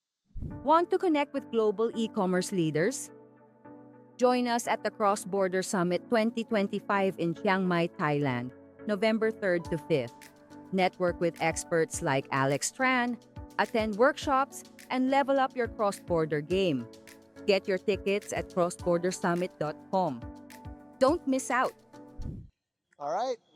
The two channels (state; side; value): identical; both; correlation 1.00